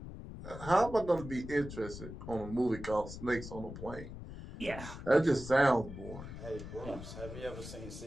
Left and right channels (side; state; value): left; noise; rumble, 11 dB below the sound